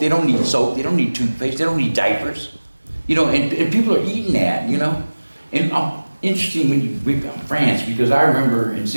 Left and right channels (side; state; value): both; inverted; correlation -1.00